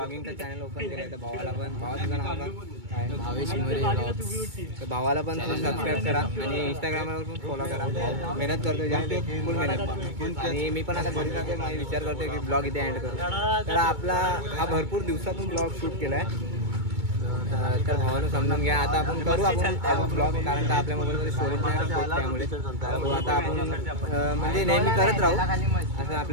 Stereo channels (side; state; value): left; late; 2.2 ms